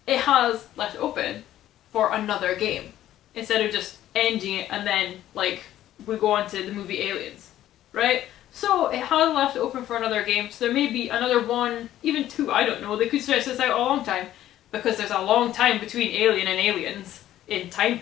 it has left it open for another game, instead of just ending it and then like we go on to the movie Aliens, right? So it has left it open for another game, so there may be another 1, even 2, I don't know. They could stretch this out a long time, because there's a long time between Alien and Aliens in time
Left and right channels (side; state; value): right; quieter; 12.9 dB